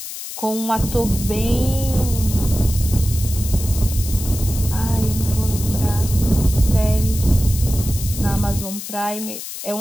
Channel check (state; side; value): noise; left; hiss, 9 dB below the sound